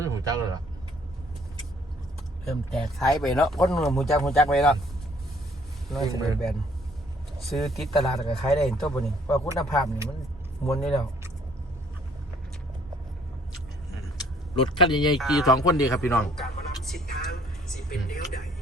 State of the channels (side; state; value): both; normal; correlation 0.61